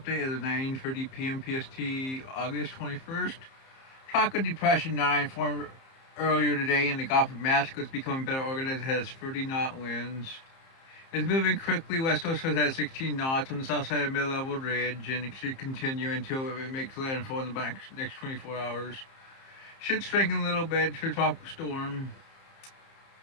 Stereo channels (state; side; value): late; right; 30 ms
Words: at 9:30 p.m. PST, August 21st. Tropical Depression 9 formed earlier today in the Gulf of Mexico. It's becoming better organized. It has 30 knot winds. It's moving quickly west northwest at 16 knots on the south side of mid-level ridge, and it should continue until it makes landfall in the next 24 hours. Should strengthen a little bit to a tropical storm.